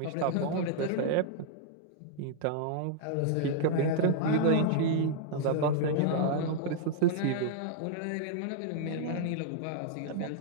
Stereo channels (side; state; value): both; different; correlation -0.01